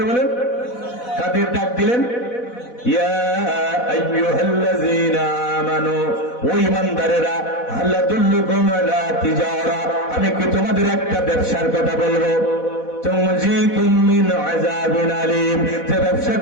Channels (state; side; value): late; right; 4.1 ms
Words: বলেন, কাদের ডাক দিলেন? ইয়া আইয়ুহাল্লাযীনা আমানু, ও ঈমানদারেরা, হাল আদুল্লুকুম আলা তিজারা, আমি কি তোমাদের একটা ব্যবসার কথা বলবো? তুনজিকুম মিন আযাবিন আলীম, যে ব্যবসা